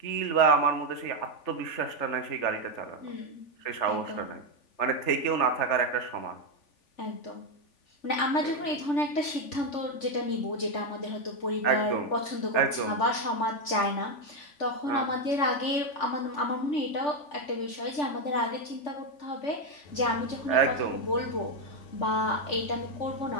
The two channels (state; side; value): late; right; 3.4 ms